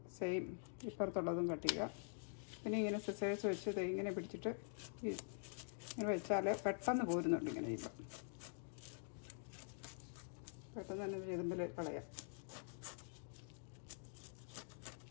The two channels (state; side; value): silent; right; digital silence